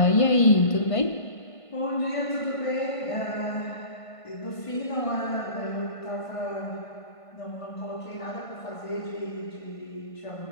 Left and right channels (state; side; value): late; right; 1.5 ms